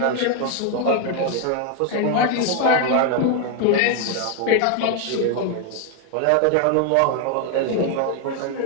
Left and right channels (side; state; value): both; different; correlation 0.01